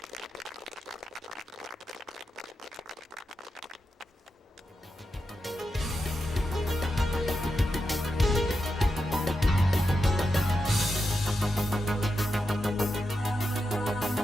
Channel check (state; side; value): normal; both; correlation 0.88